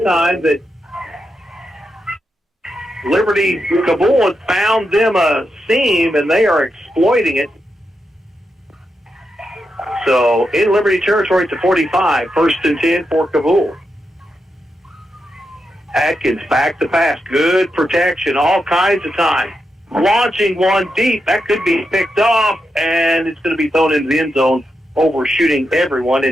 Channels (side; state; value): both; normal; correlation 0.86